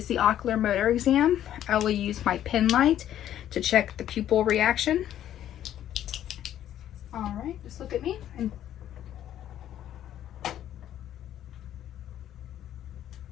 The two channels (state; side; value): quieter; right; 11.4 dB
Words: the ocular motor exam. I will use my pen light to check the pupil reaction. All right, just look at me.